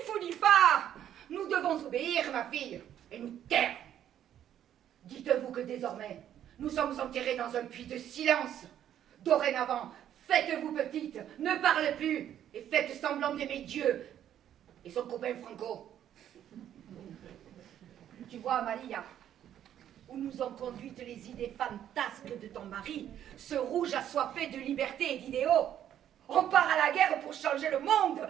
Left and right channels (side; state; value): left; quieter; 10.6 dB